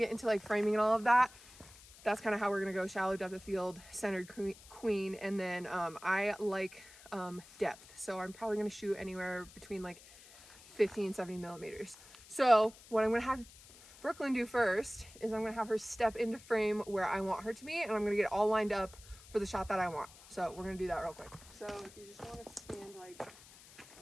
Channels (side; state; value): left; noise; hiss, 21 dB below the sound